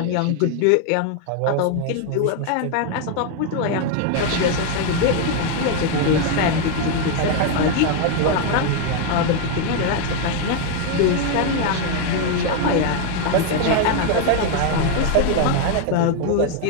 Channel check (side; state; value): both; different; correlation 0.01